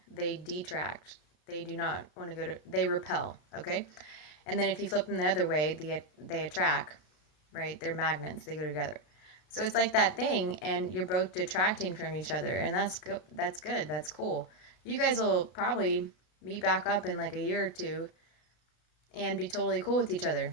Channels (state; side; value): late; right; 33 ms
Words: they detract. They do not want to they repel, okay? And then if you flip them the other way, they attract, right? They're magnets, they go together. So it's like that thing, and you're both detracting from each other, and that's good. That's cool. You guys will probably meet back up in like a year or two and be totally cool with each